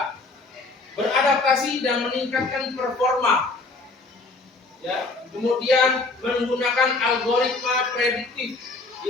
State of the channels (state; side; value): quieter; right; 3.5 dB